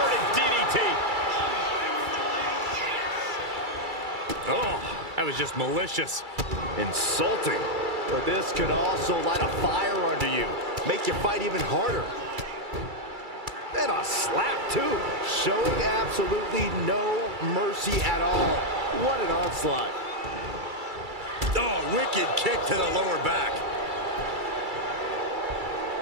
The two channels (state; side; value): late; left; 2.3 ms